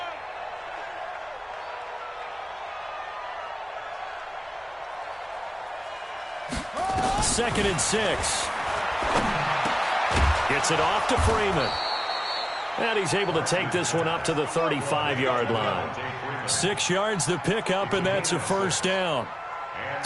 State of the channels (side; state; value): both; identical; correlation 1.00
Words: Second and 6. Gets it off to Freeman. And he's able to take this one up to the 35-yard line. 6 yards to pick up, and that's a first down.